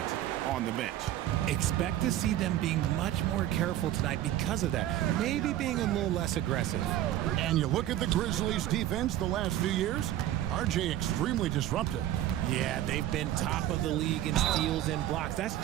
on the bench. Expect to see them being much more careful tonight because of that. Maybe being a little less aggressive. And you look at the Grizzlies' defense the last few years, RJ extremely disruptive. Yeah, they've been top of the league in steals and blocks. That's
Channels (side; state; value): left; quieter; 12.9 dB